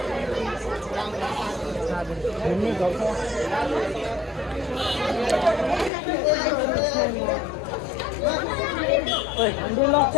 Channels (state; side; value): drops out; right; at 5.9 s